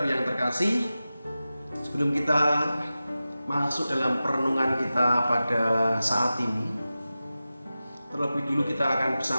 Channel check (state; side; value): inverted; both; correlation -0.94